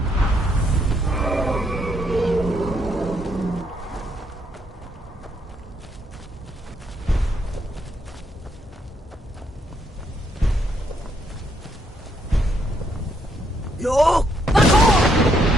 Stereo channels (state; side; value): normal; both; correlation 0.74